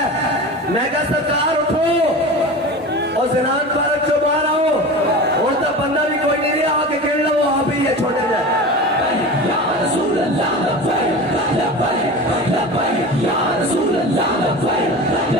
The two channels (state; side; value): normal; both; correlation 0.31